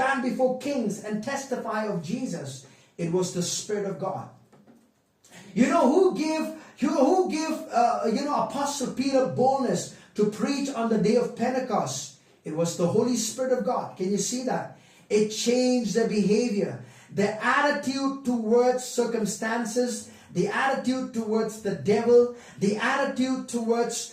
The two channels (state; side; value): identical; both; correlation 1.00